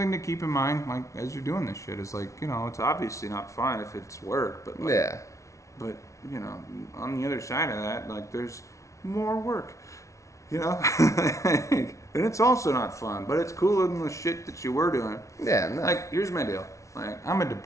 to keep in mind, like, as you're doing this shit. It's like, you know, it's obviously not fun if it's work, but like, Yeah. but, you know, on the other side of that, like, there's more work, you know? And it's also not fun, but it's cooler than the shit that you were doing. Yeah. No. Like, here's my deal. Like, I'm a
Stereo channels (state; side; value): late; right; 0.14 ms